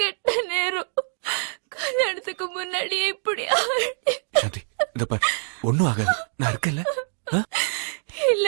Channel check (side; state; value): left; silent; digital silence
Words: நேரம் கல்யாணத்துக்கு முன்னாடியே இப்படி சாந்தி, இத பாரு, ஒண்ணும் ஆகாது, நான் இருக்கல.